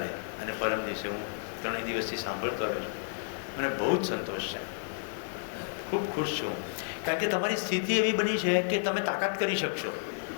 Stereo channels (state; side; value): silent; right; digital silence